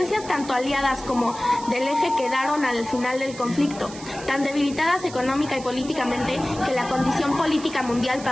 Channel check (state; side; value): noise; right; hiss, 15 dB below the sound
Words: tanto aliadas como del eje quedaron al final del conflicto, tan debilitadas económica y políticamente que la condición política mundial